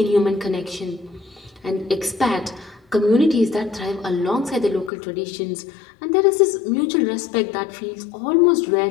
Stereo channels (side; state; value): right; drops out; at 4.9 s